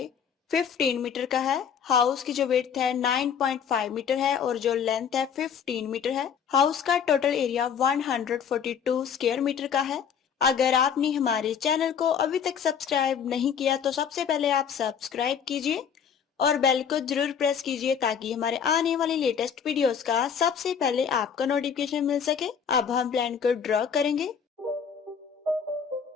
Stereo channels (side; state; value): right; quieter; 7.5 dB